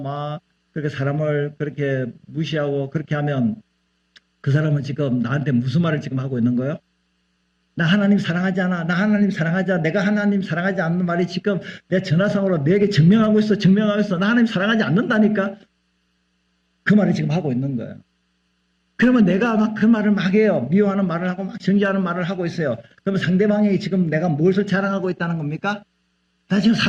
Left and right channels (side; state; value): both; identical; correlation 1.00